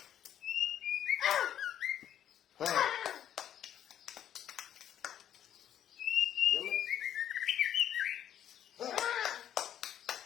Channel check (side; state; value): right; quieter; 10.4 dB